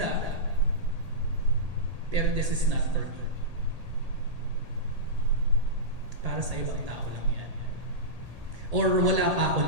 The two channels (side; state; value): left; late; 1.8 ms